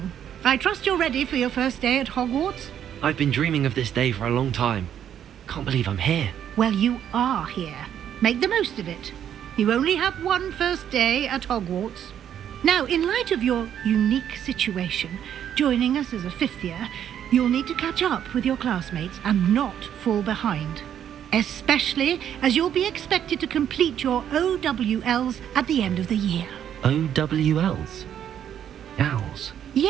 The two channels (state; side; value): quieter; left; 9.7 dB